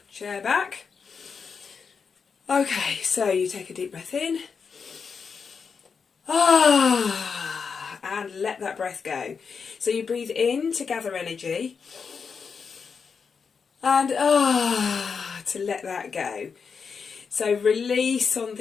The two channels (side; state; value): right; quieter; 5.8 dB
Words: chair back. Okay, so you take a deep breath in. And let that breath go. So you breathe in to gather energy. And to let that go. So release on